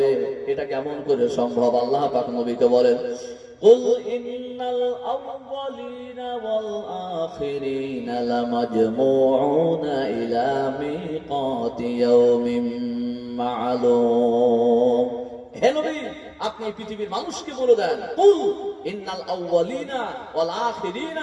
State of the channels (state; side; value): identical; both; correlation 1.00